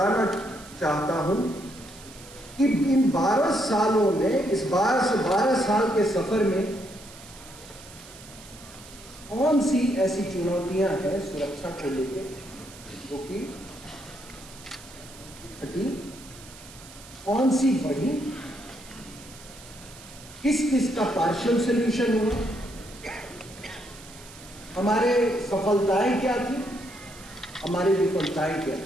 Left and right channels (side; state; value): right; noise; hiss, 19 dB below the sound